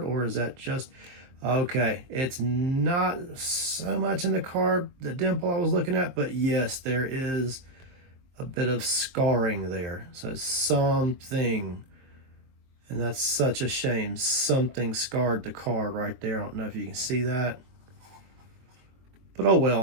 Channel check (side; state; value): left; late; 22 ms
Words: or is that just okay? It's not so much in the card, the dimple I was looking at, but yes, there is a bit of scarring there. So something, and that's such a shame, something scarred the card right there. I don't know if you can see that, but oh